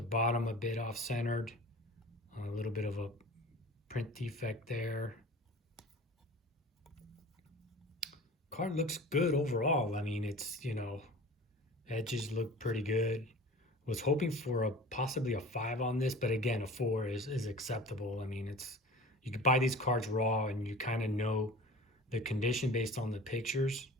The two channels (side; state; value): both; normal; correlation 0.40